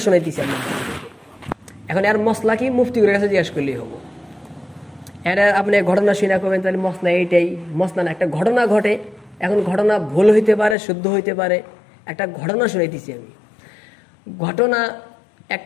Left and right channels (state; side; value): drops out; right; at 10.8 s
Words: শোনাইতেছি আপনার। এখন আর মশলা কি মুফতির কাছে জিজ্ঞাসা করলেই হবো। এটা আপনি ঘটনা শুনে করবেন, তাহলে মশলা এইটাই, মশলা না, একটা ঘটনা ঘটে। এখন ঘটনা ভুল হইতে পারে, শুদ্ধ হইতে পারে, একটা ঘটনা শুনাইতেছি আমি। ঘটনা,